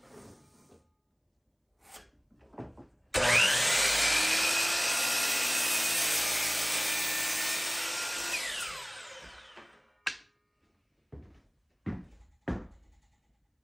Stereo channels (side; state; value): both; identical; correlation 1.00